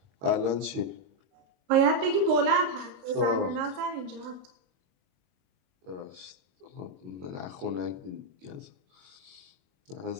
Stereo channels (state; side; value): late; left; 22 ms